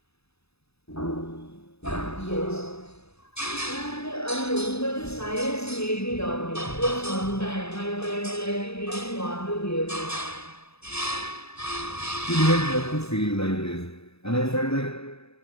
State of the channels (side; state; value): right; late; 0.79 ms